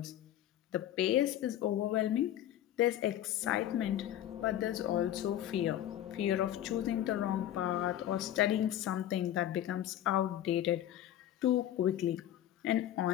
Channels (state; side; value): quieter; right; 12.0 dB